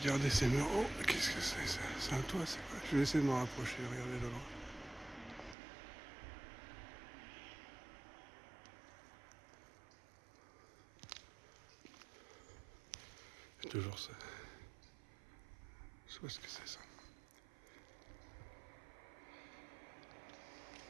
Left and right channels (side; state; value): left; drops out; at 5.6 s